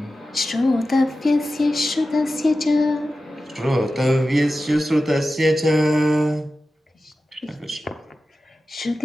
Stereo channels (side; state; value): both; normal; correlation 0.93